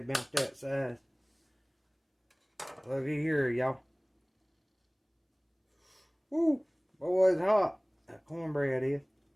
about that size. Looky here, y'all. Woo! Boy, it's hot. That cornbread is.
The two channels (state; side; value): identical; both; correlation 1.00